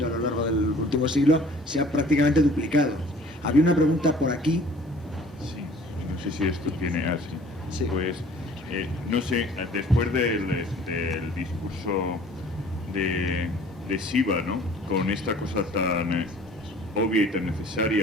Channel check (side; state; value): both; normal; correlation 0.51